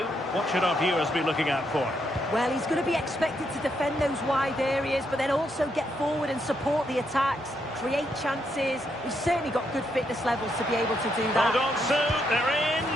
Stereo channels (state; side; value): normal; both; correlation 0.78